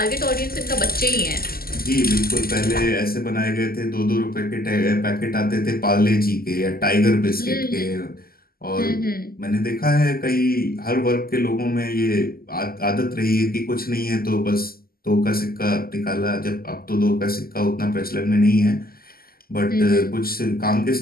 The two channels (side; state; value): right; late; 0.43 ms